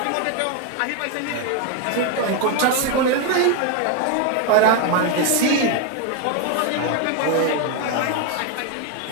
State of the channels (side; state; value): both; different; correlation 0.01